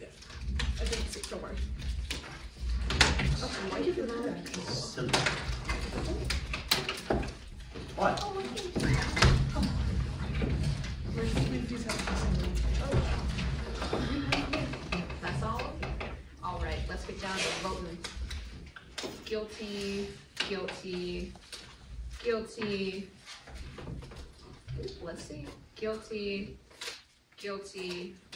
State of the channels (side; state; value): both; identical; correlation 1.00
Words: think it's, don't worry. Why did you do that? What? That's all? Alright, let's get down to voting. Guilty, guilty, guilty. Let's see. Guilty, guilty,